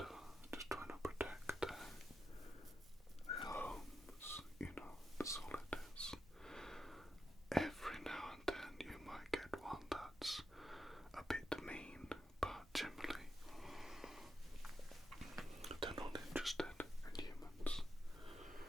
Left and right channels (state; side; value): normal; both; correlation 0.87